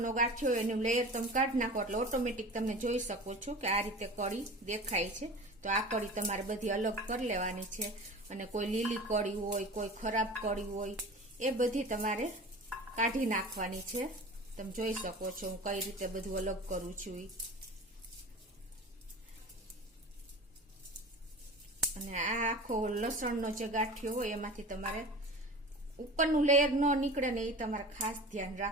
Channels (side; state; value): both; normal; correlation 0.36